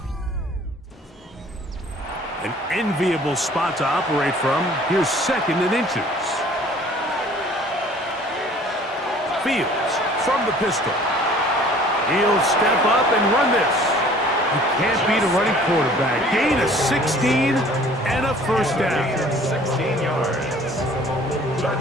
An enviable spot to operate from. Here's 2nd and inches. Fields from the pistol. He'll step up and run this. You can't beat a running quarterback. Gain of 16 and a first down. 16 yards.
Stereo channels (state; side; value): normal; both; correlation 0.52